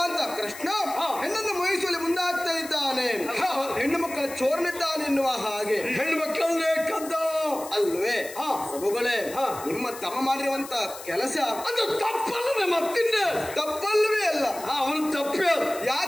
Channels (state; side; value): noise; left; hiss, 14 dB below the sound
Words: ಅಂತ ಕೃಷ್ಣ ಹೆಣ್ಣನ್ನು ಮೋಹಿಸುವಲ್ಲಿ ಮುಂದಾಗ್ತಾ ಇದ್ದಾನೆ, ಹೆಣ್ಣು ಮಕ್ಕಳ ಚೋರನಿದ್ದಾನೆ ಎನ್ನುವ ಹಾಗೆ. ಹೆಣ್ಣು ಮಕ್ಕಳನ್ನೇ ಕದ್ದ ಅಲ್ವೇ ಪ್ರಭುಗಳೇ? ನಿಮ್ಮ ತಮ್ಮ ಮಾಡಿರುವಂತ ಕೆಲಸ ಅದು ತಪ್ಪಲ್ಲದೆ ಮತ್ತಿಂದ ತಪ್ಪಲ್ವೇ ಅಲ್ಲ. ಅವನು ತಪ್ಪೇ.